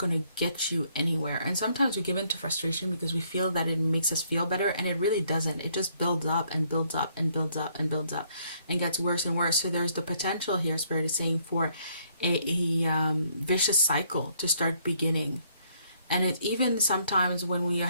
to get you anywhere. And sometimes we give in to frustration because we feel that it makes us feel better. And it really doesn't. It just builds up and builds up and builds up and builds up and gets worse and worse. So there's the potential here, Spirit is saying, for a vicious cycle to start beginning. And it even sometimes when we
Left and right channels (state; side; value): inverted; both; correlation -0.68